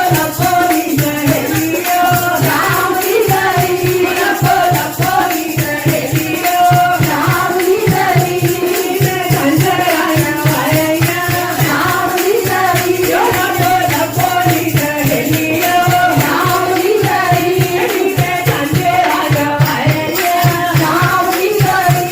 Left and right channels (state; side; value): identical; both; correlation 1.00